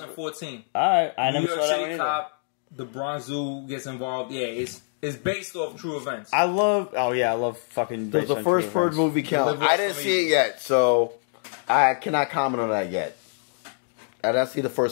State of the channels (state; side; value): silent; right; digital silence